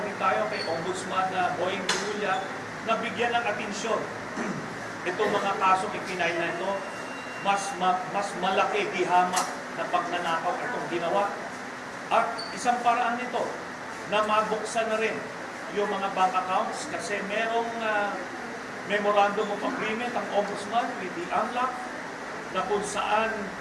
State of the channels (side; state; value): both; identical; correlation 1.00